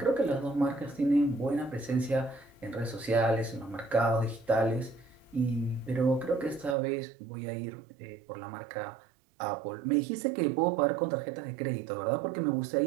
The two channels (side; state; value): left; drops out; at 6.8 s